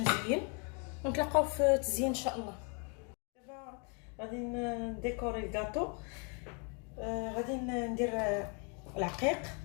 ونتلاقاو في التزيين ان شاء الله. دابا غادي نديكوري الكاطو. غادي ندير العقيق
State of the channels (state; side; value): quieter; right; 36.5 dB